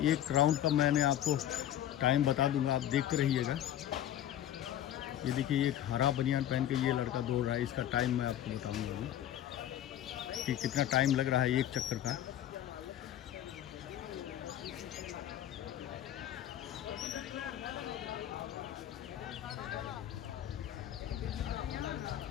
1 राउंड का मैं आपको टाइम बता दूंगा, आप देखते रहिएगा। ये देखिए एक हरा बनियान पहन के ये लड़का दौड़ रहा है। इसका टाइम मैं आपको बताऊंगा अभी कि कितना टाइम लग रहा है एक चक्कर का।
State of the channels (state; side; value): quieter; right; 11.7 dB